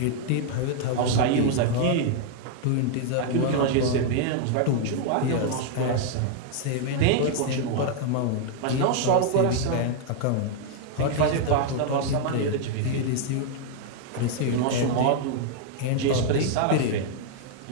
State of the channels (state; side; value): different; both; correlation 0.00